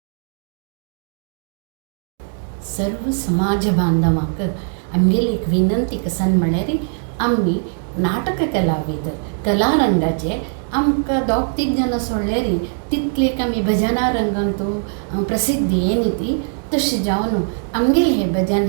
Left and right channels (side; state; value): left; silent; digital silence